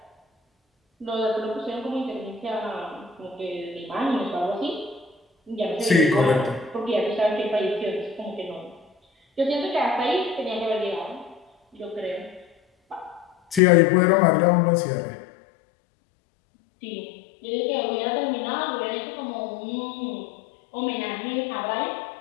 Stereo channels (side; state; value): right; drops out; at 13.6 s